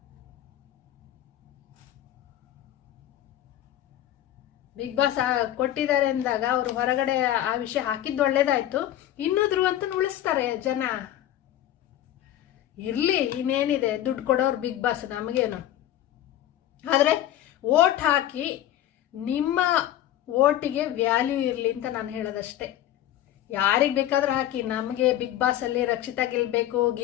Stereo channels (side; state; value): right; quieter; 12.7 dB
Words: ಬಿಗ್ ಬಾಸ್ ಕೊಟ್ಟಿದ್ದಾರೆ ಅಂದಾಗ ಅವರು ಹೊರಗಡೆ ಆ ವಿಷಯ ಹಾಕಿದ್ದು ಒಳ್ಳೇದಾಯ್ತು. ಇನ್ನೂ ಧ್ರುವಂತನ ಉಳಿಸ್ತಾರೆ ಜನ, ಇರ್ಲಿ, ಇನ್ನೇನಿದೆ, ದುಡ್ಡು ಕೊಡೋರು ಬಿಗ್ ಬಾಸ್, ನಮಗೇನು. ಆದ್ರೆ ವೋಟ್ ಹಾಕಿ ನಿಮ್ಮ ವೋಟಿಗೆ ವ್ಯಾಲ್ಯೂ ಇರಲಿ ಅಂತ ನಾನು ಹೇಳೋದಷ್ಟೇ. ಯಾರಿಗೆ ಬೇಕಾದ್ರೂ ಹಾಕಿ, ನಮಗೆ ಬಿಗ್ ಬಾಸ್ ಅಲ್ಲಿ ರಕ್ಷಿತಾ ಗೆಲ್ಬೇಕು,